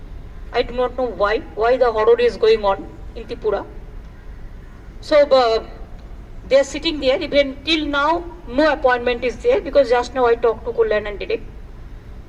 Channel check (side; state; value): both; identical; correlation 1.00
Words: I do not know why the horror is going on in Tripura. So they are sitting there. Even till now, no appointment is there, because just now I talked to Kullan and Direct.